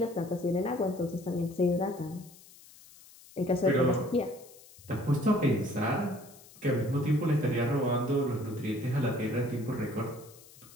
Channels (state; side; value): noise; left; hiss, 22 dB below the sound